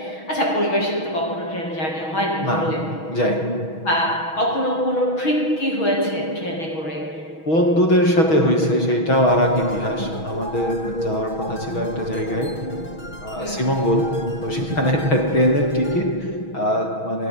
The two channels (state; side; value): late; right; 6.3 ms